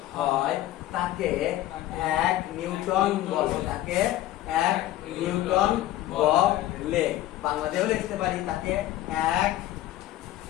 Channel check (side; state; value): right; quieter; 14.4 dB